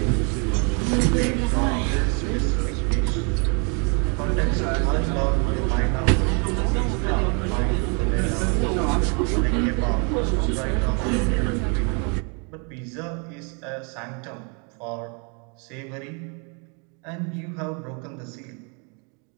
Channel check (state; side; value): quieter; left; 35.8 dB